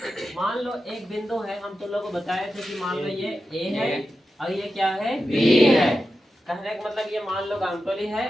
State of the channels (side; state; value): both; normal; correlation 0.91